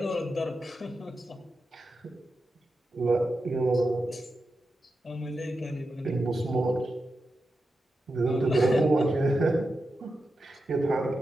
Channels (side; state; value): both; normal; correlation 0.89